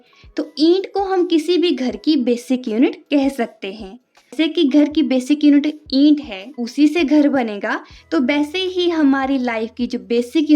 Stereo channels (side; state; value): both; identical; correlation 1.00